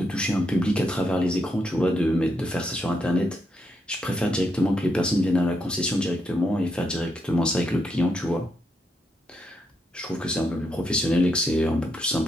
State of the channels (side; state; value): both; normal; correlation 0.80